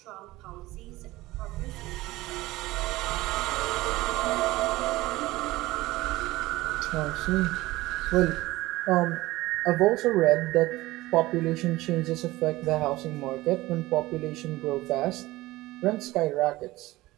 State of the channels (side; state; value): left; quieter; 18.6 dB